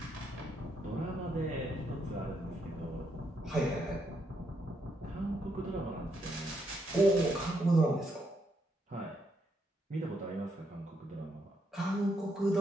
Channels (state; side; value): normal; both; correlation 0.77